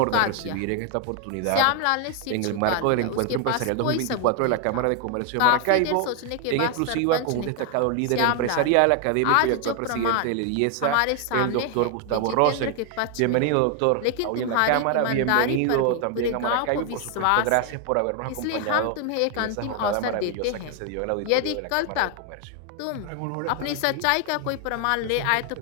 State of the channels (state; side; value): different; both; correlation 0.00